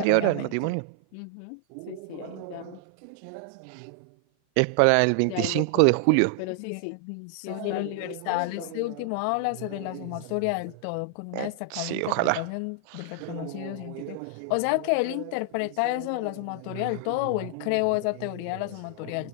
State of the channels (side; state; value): both; different; correlation 0.00